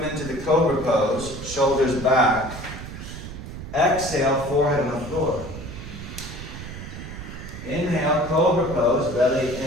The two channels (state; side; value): noise; right; rumble, 10 dB below the sound